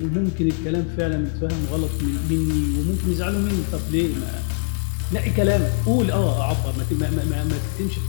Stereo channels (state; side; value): silent; right; digital silence